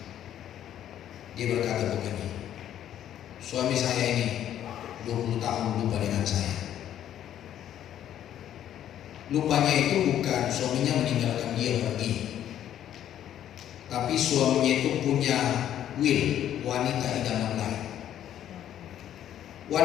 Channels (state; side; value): quieter; right; 11.0 dB